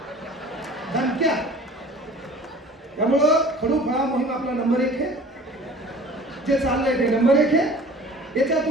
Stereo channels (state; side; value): normal; both; correlation 0.45